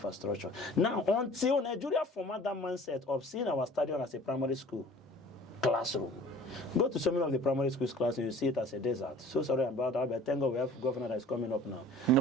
Now, until Nigeria format that mindset of seeing our stadium as a primary school classroom, go to so many of the primary schools classrooms, you see it as a desert. So sorry about that, but thank God we have a governor that is coming up now.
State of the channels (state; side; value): normal; both; correlation 0.47